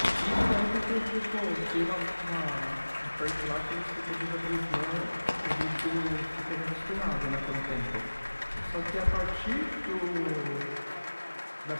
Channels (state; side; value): inverted; both; correlation -1.00